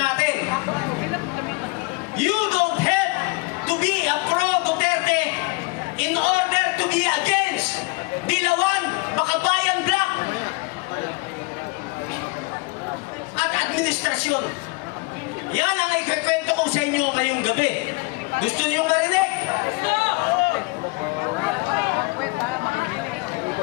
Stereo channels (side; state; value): right; quieter; 26.9 dB